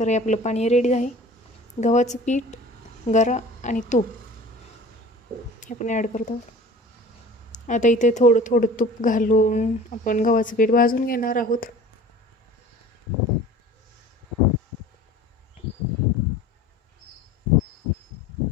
हे आपलं पाणी रेडी आहे। गव्हाचं पीठ, गरा आणि तूप हे आपण ॲड करत आहोत। आता इथे थोडं थोडं तूप घालून आपण गव्हाचं पीठ भाजून घेणार आहोत।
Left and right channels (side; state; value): both; normal; correlation 0.43